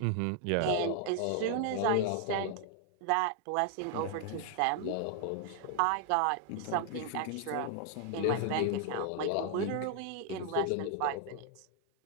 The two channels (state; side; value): different; both; correlation 0.00